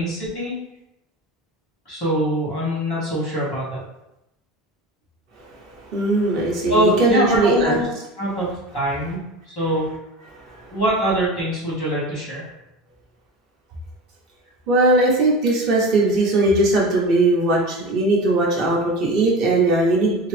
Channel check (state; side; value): normal; both; correlation 0.31